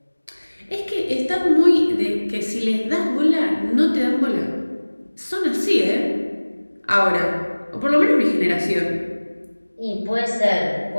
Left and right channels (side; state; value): both; inverted; correlation -1.00